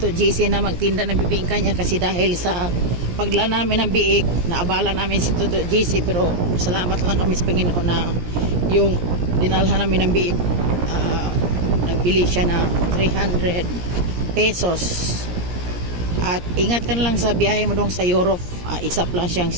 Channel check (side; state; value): left; late; 17 ms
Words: GC na magtinda ng bibingka niya kasi dahil sa pagdala namin ng biik, naabala namin si Toto GC pero salamat lang kami sa Panginoon na yung dinalhan namin ng biik, nagbili siya na 300 pesos. At ingat ka na lang sa biyahe mo dong sa Europe, isa lang siyang